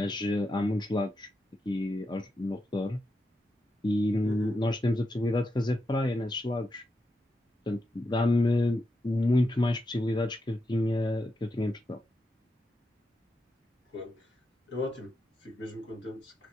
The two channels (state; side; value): normal; both; correlation 0.86